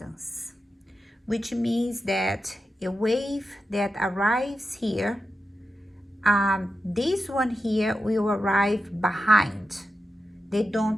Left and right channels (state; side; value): normal; both; correlation 0.90